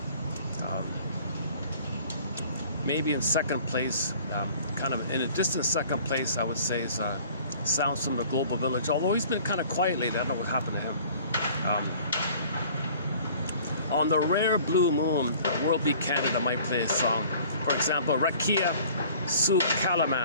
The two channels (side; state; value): both; inverted; correlation -0.51